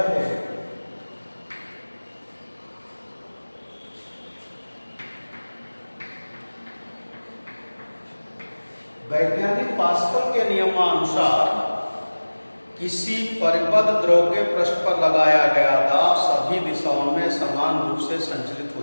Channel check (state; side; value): inverted; both; correlation -1.00